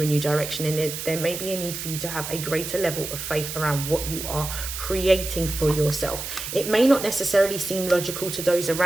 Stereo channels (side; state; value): right; noise; hiss, 7 dB below the sound